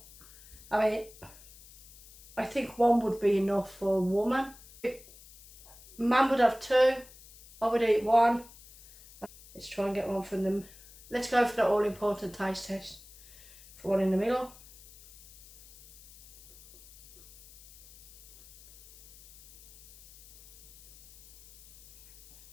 I mean, I think 1 would be enough for a woman. Man would have 2, I would eat 1. Let's try and get 1 from them. Let's go for the all important taste test for 1 in the middle.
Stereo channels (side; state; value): left; noise; hiss, 21 dB below the sound